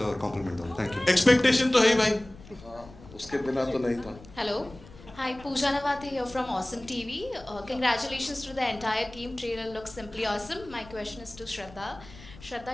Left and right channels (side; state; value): left; noise; rumble, 19 dB below the sound